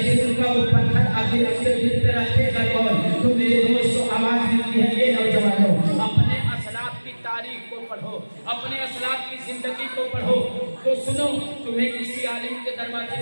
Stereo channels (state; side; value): inverted; both; correlation -1.00